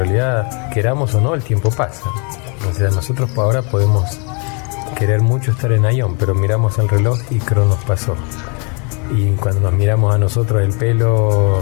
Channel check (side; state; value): right; quieter; 34.8 dB